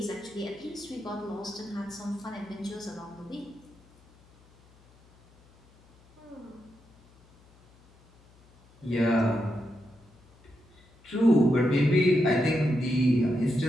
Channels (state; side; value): noise; left; hum, 28 dB below the sound